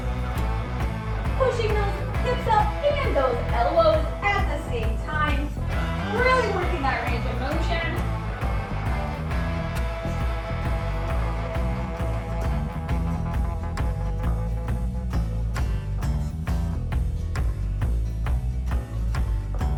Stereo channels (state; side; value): identical; both; correlation 1.00